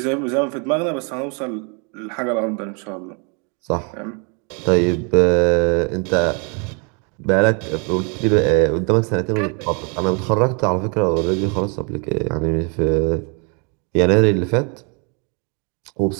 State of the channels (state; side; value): quieter; left; 34.5 dB